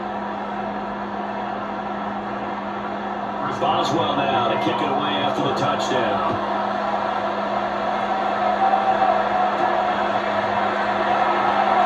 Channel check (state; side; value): identical; both; correlation 1.00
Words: Boswell now to kick it away after the touchdown.